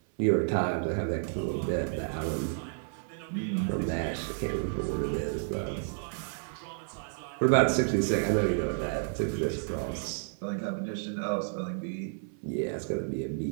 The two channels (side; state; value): left; silent; 57 dB below the other